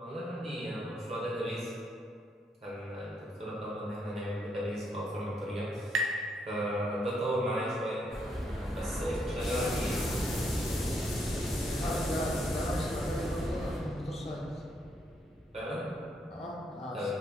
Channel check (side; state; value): both; normal; correlation 0.75